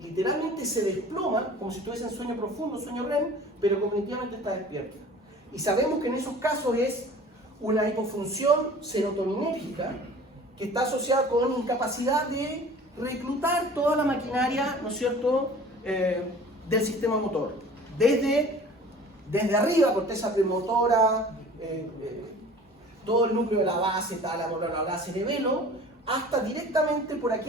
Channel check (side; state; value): both; normal; correlation 0.45